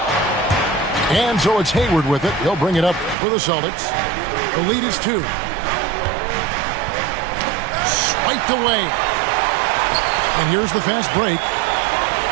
And so it's Hayward with it. He'll bring it up for the Celtics. The lead is 2. Swiped away. And here's the fast break.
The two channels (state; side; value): drops out; left; at 3.2 s